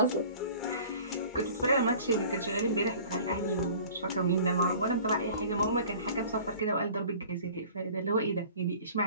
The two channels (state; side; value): inverted; both; correlation -0.47